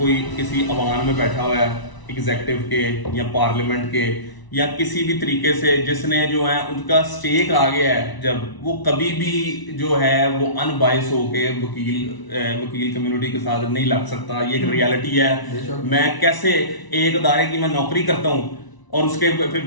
किसी अवान में बैठा हुआ है एग्जेक्टिव के या पार्लियामेंट के या किसी भी तरीके से, जिसने जो है उनका स्टेक आ गया है, जब वो कभी भी जो है वो अनबायस होके वकील कम्युनिटी के साथ नहीं लग सकता। ये एक रियलिटी है। मैं कैसे एक अदारे की मैं नौकरी करता हूँ और उसके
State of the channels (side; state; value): right; late; 1.0 ms